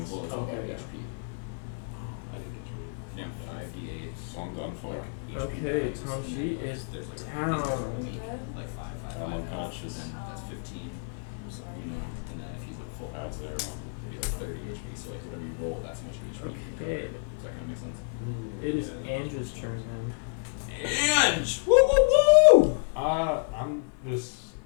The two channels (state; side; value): silent; right; 58 dB below the other